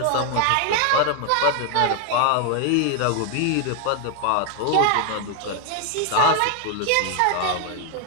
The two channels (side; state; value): both; different; correlation 0.00